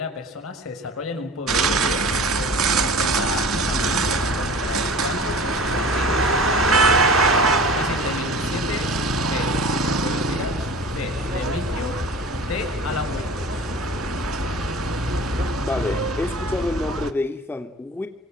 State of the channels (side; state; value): both; normal; correlation 0.40